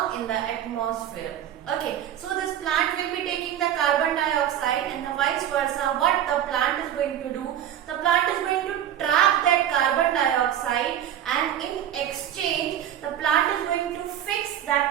in the atmosphere. Okay, so this plant will be taking the carbon dioxide and the vice versa. What the plant is going to do? The plant is going to trap that carbon dioxide, and in exchange the plant is going to fix that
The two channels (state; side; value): quieter; left; 10.8 dB